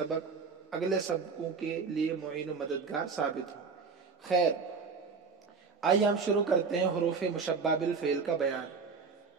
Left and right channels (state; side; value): quieter; left; 5.1 dB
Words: اگلے سبقوں کے لیے معین و مددگار ثابت ہو۔ خیر، آئیے ہم شروع کرتے ہیں حروف مشبہ بالفعل کا بیان۔